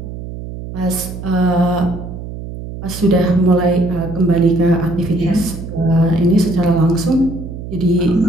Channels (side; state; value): right; noise; hum, 10 dB below the sound